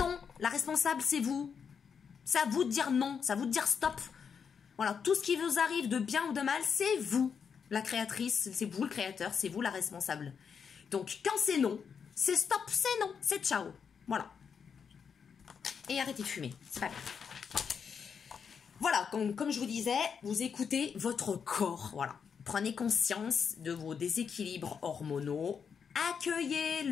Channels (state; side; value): quieter; right; 6.6 dB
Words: la responsable, c'est vous. C'est à vous de dire non, c'est à vous de dire stop. Voilà, tout ce qui vous arrive de bien ou de mal, c'est vous, la créatrice, c'est vous le créateur, c'est vous la responsable. Donc, quand c'est non, c'est stop, c'est non, c'est ciao. Voilà. Et arrêtez de fumer, c'est pas grave. Voilà, comme je vous disais, vous écoutez votre corps, voilà. Prenez conscience de vos déséquilibres hormonaux,